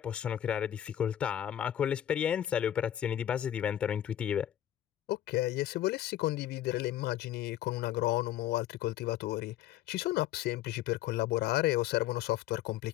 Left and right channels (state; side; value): quieter; right; 11.9 dB